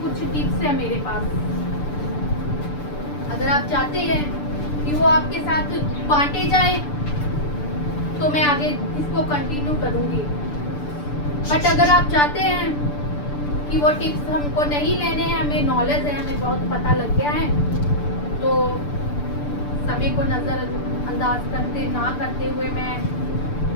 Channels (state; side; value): late; right; 6.8 ms